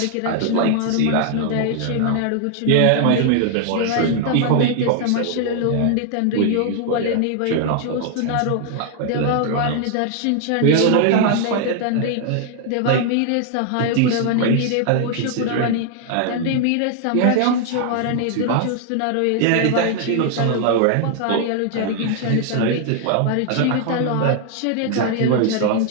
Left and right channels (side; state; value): both; different; correlation 0.00